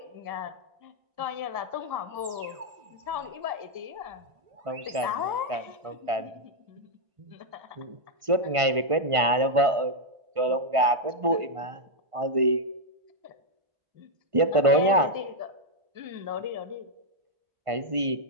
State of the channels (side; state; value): left; late; 1.5 ms